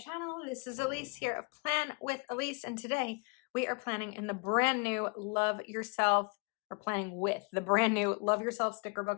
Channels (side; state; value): right; quieter; 34.8 dB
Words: This is Elise here of Plan with Elise, and today we are planning in the brand new Love Yourself, or planning with the brand new Love Yourself sticker